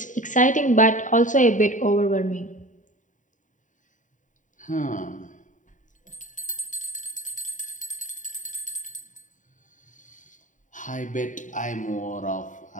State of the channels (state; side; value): late; right; 0.37 ms